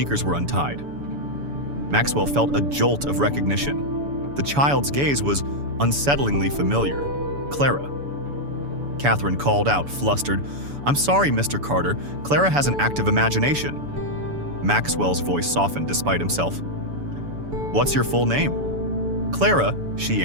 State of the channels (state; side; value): late; left; 7.0 ms